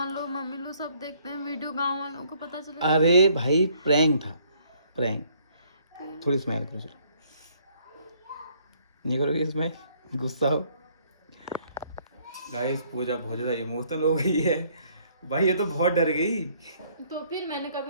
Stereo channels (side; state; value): both; inverted; correlation -0.64